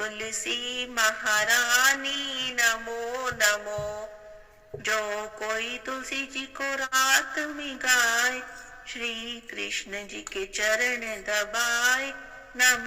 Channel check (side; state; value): both; identical; correlation 1.00